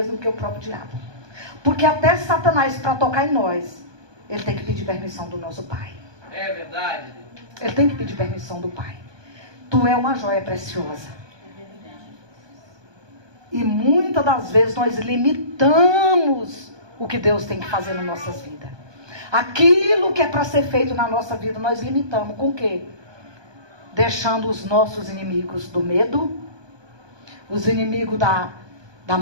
do que o próprio diabo. Porque até Satanás, para tocar em nós, ele tem que pedir permissão do nosso Pai. É verdade. Ele tem que pedir permissão do Pai. Tu é uma joia preciosa. E muitas das vezes nós limitamos o que Deus tem que fazer nas nossas vidas. Aquilo que é para ser feito na nossa vida, nós limitamos. Com o quê? Deixando os nossos inimigos do medo, os inimigos da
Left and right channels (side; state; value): left; late; 1.2 ms